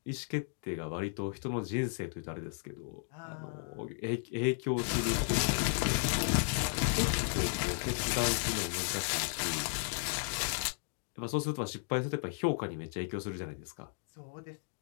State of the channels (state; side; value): silent; right; 55 dB below the other